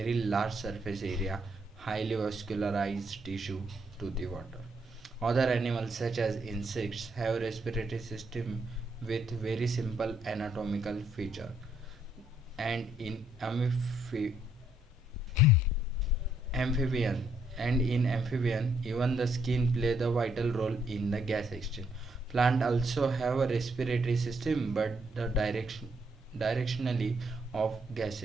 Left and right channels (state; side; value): normal; both; correlation 0.72